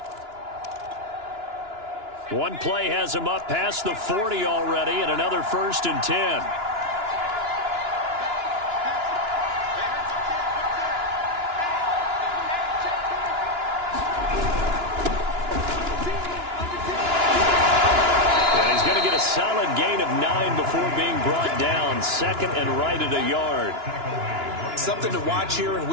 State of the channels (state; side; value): late; left; 2.9 ms